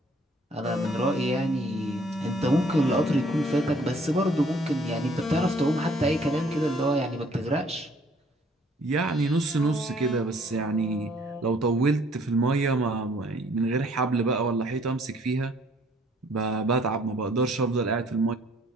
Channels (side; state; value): both; normal; correlation 0.60